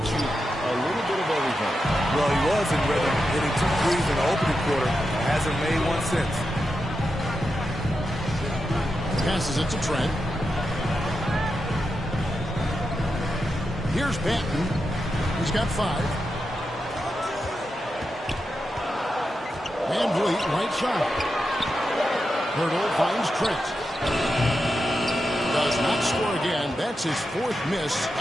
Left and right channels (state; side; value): normal; both; correlation 0.88